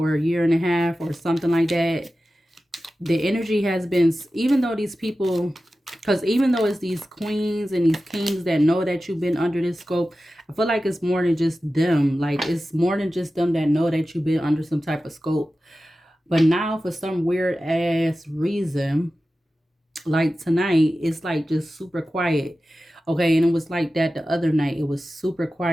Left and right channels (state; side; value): normal; both; correlation 0.94